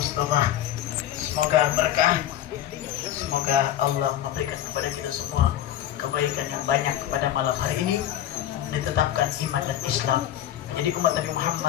Semoga berkah, semoga Allah memberikan kepada kita semua kebaikan yang banyak pada malam hari ini, ditetapkan iman dan Islam menjadi umat Nabi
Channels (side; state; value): right; quieter; 11.9 dB